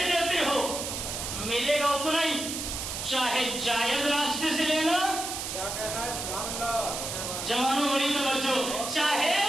لیتے ہو۔ ملے گا اتنا ہی، چاہے جائز راستے سے لینا، جوانوں بڑی توجہ، چاہے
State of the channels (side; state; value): right; noise; hiss, 5 dB below the sound